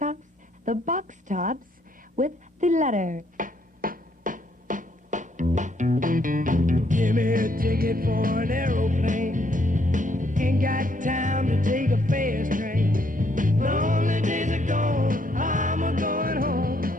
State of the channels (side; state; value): both; normal; correlation 0.70